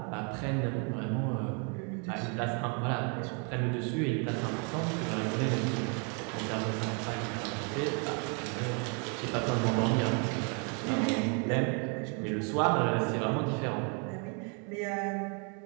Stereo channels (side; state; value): left; quieter; 37.2 dB